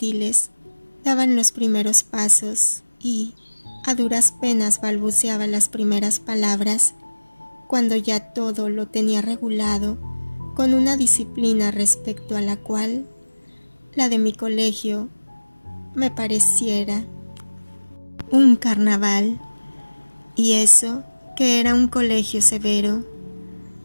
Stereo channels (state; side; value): inverted; both; correlation -1.00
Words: daban los primeros pasos y a duras penas balbuceaba las primeras palabras, cuando ya todo lo tenía regulado con una disciplina respecto a la cual la de mi colegio me pareciera un carnaval, y eso que era un colegio severo.